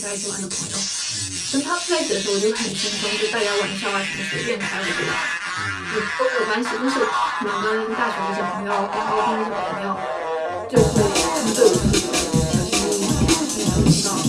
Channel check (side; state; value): both; identical; correlation 1.00